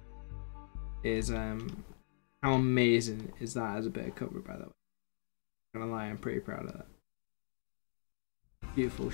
is how amazing is that as a bit of cover, by the way. Not gonna lie, I'm pretty proud of that. Beautiful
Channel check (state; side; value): silent; right; digital silence